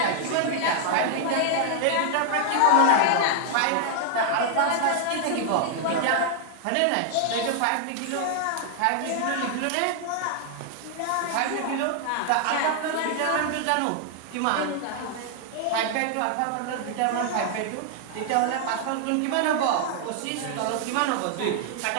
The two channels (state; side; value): different; both; correlation 0.00